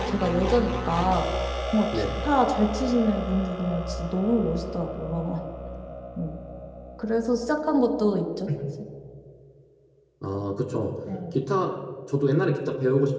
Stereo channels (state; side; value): identical; both; correlation 1.00